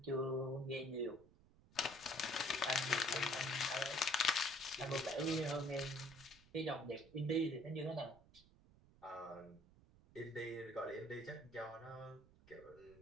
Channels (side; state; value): right; noise; rumble, 25 dB below the sound